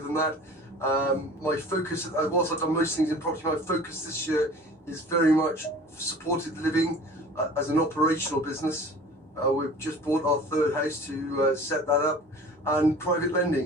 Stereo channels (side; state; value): both; normal; correlation 0.44